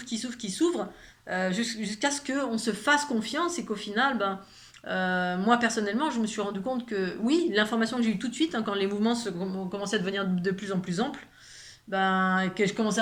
qui s'ouvrent, qui s'ouvrent, jusqu'à ce qu'on se fasse confiance et qu'au final, ben, moi personnellement, je me suis rendu compte que oui, l'information que j'ai eue tout de suite, hein, quand les mouvements ont commencé à devenir de plus en plus amples, ben, que je commençais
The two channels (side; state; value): both; identical; correlation 1.00